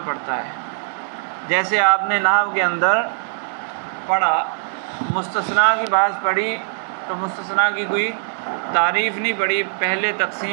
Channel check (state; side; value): silent; left; digital silence